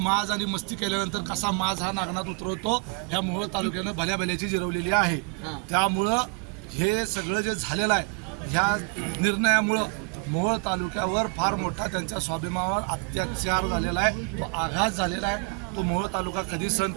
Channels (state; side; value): quieter; left; 34.9 dB